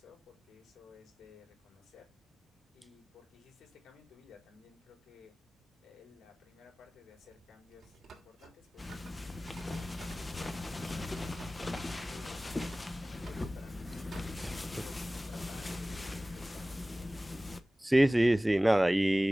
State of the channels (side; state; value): both; normal; correlation 0.98